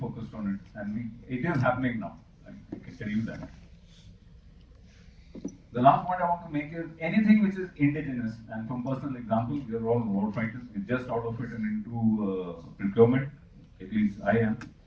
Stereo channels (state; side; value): identical; both; correlation 1.00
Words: on it, and it is happening now. I can tell you that. The last point I want to make is anything which is indigenous, and from personal example, we are all war fighters. We're just out of it and into procurement. At least I am.